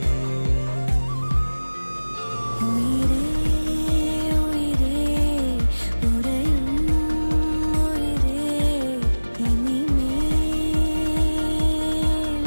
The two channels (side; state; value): both; inverted; correlation -1.00